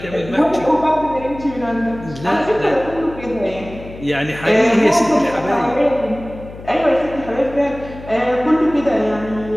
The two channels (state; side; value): noise; left; hum, 15 dB below the sound